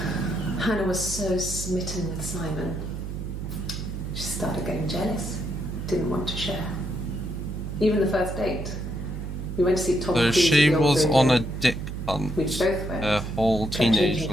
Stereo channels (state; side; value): noise; right; hum, 6 dB below the sound